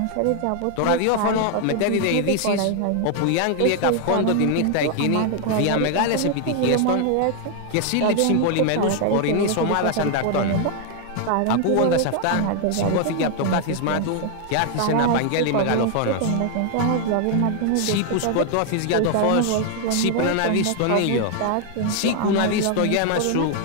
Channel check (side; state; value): both; different; correlation 0.00